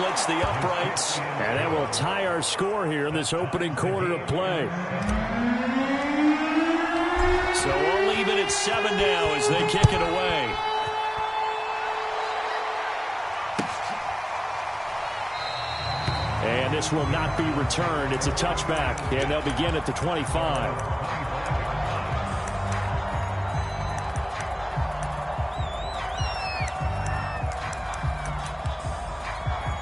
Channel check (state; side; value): identical; both; correlation 1.00